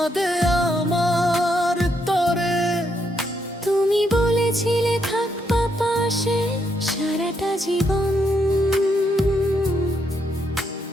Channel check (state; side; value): normal; both; correlation 0.77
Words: আমার তরে। তুমি বলেছিলে থাকবা পাশে সারাটা জীবন,